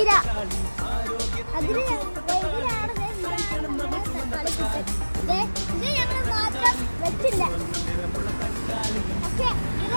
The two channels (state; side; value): inverted; both; correlation -1.00